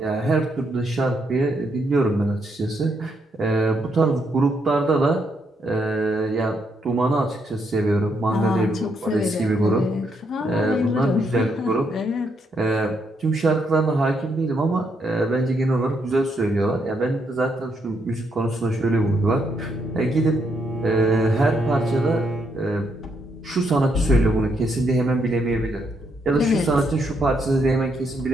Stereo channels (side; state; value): both; normal; correlation 0.76